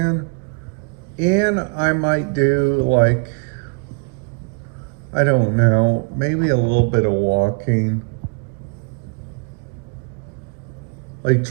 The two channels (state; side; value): quieter; left; 35.6 dB